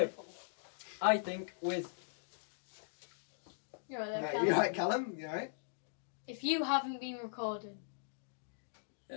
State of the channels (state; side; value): silent; right; digital silence